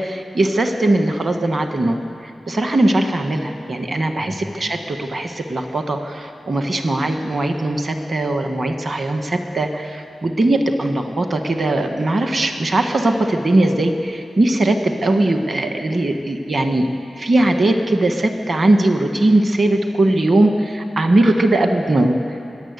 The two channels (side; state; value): both; normal; correlation 0.94